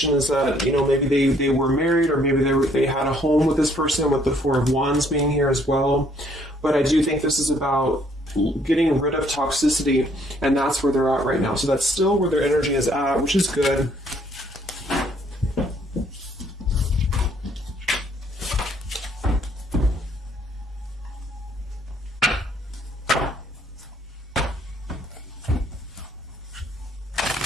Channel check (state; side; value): normal; both; correlation 0.65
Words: is that, you know, maybe they were married, or maybe they had a home with this person, with the Four of Wands being here as well. But I do think this is about getting rid of toxicity, and that's where they're at right now. So that's still where their energy is at, which is good.